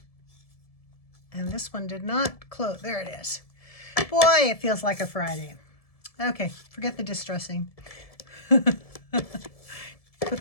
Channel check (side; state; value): right; late; 1.7 ms